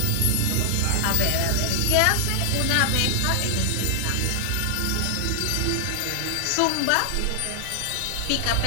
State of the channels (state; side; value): different; both; correlation 0.00